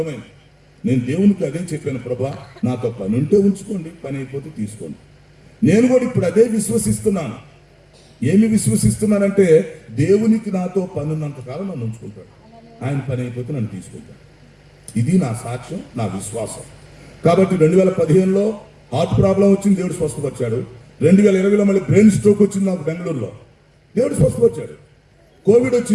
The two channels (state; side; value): identical; both; correlation 1.00